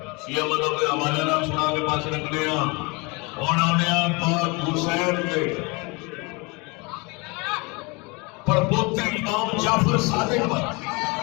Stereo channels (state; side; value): quieter; right; 27.8 dB